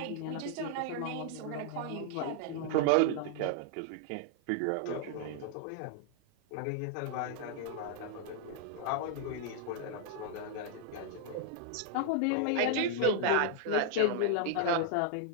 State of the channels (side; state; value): both; different; correlation 0.00